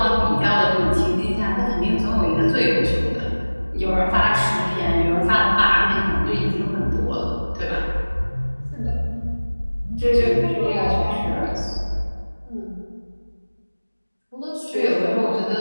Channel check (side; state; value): both; inverted; correlation -1.00